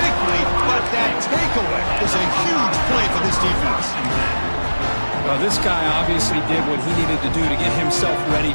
but that takeaway is a huge play for this defense. Well, this guy obviously did what he needed to do to get himself ready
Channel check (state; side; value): inverted; both; correlation -1.00